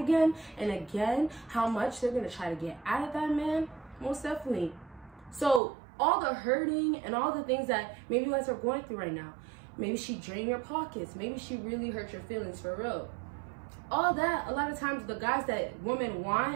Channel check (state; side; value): drops out; left; at 5.6 s